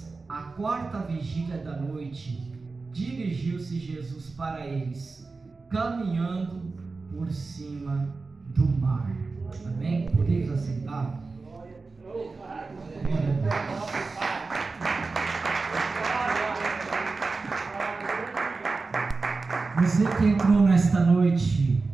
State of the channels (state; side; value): quieter; left; 4.0 dB